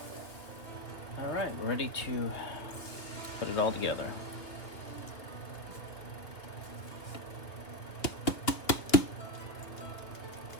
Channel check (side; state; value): right; late; 2.6 ms